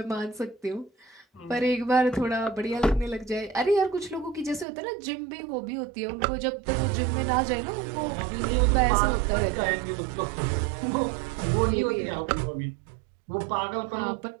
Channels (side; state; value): left; drops out; at 4.7 s